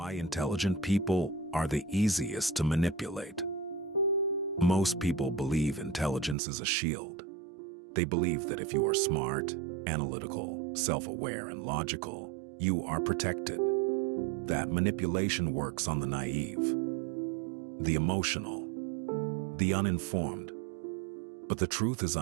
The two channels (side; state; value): left; drops out; at 6.4 s